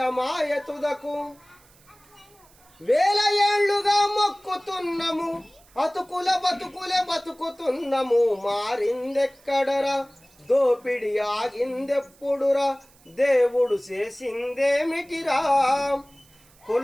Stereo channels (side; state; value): right; noise; hiss, 29 dB below the sound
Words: తుదకు. వేల ఏళ్లుగా మొక్కుతున్నము, అతుకుల బతుకులే బతుకుతున్నము. మారిందెక్కడరా, దోపిడి ఆగిందెప్పుడురా, దేవుడు చేసిందేమిటిరా.